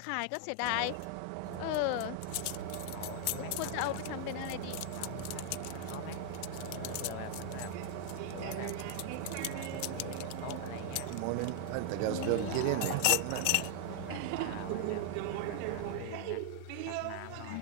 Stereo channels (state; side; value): different; both; correlation 0.00